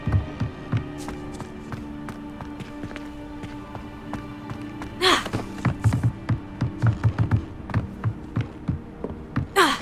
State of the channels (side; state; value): both; identical; correlation 1.00